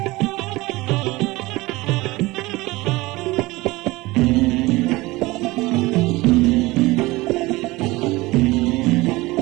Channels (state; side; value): quieter; left; 20.9 dB